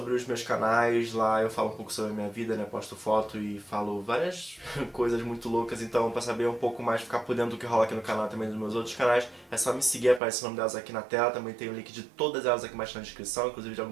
os meus canais, lá eu falo um pouco sobre a minha vida, né? Posto foto e falo várias coisas muito loucas. Então, pra saber um pouco mais, ficar por dentro do que rola aqui no canal, também dos meus outros canais, é só me seguir, aparece o nome delas aqui na tela. Também tem o link de todas elas aqui embaixo na descrição, inclusive de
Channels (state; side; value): drops out; left; at 10.2 s